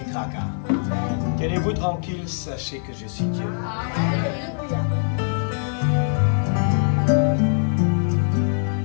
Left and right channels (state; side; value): silent; right; 64 dB below the other